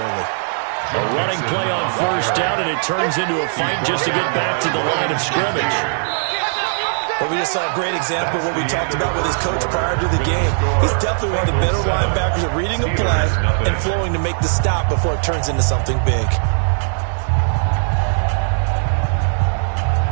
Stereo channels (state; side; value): silent; left; 67 dB below the other